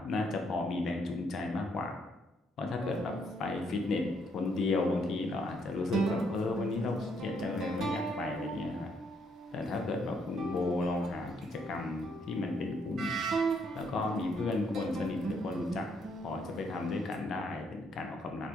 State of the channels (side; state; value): both; normal; correlation 0.72